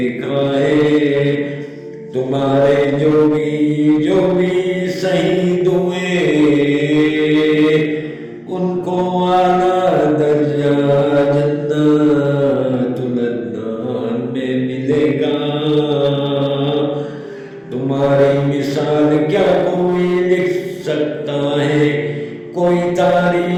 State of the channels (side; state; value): both; identical; correlation 1.00